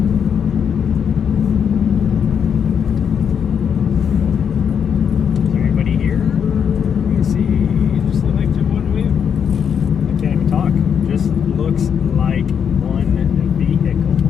Is there anybody here? Let me see. Just look like just one wheel. I can't even talk. Just looks like one vehicle.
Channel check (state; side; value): quieter; right; 7.6 dB